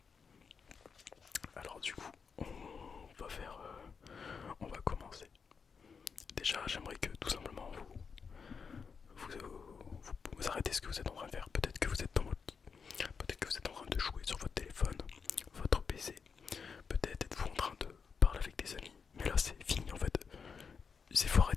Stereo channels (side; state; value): right; quieter; 5.8 dB